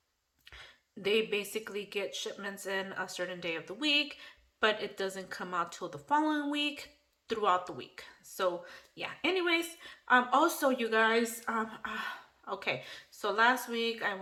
they basically get shipments in a certain day of the week, but it doesn't come out till the following week throughout the week. So yeah, anyways, also you guys, okay, so last week I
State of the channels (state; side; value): identical; both; correlation 1.00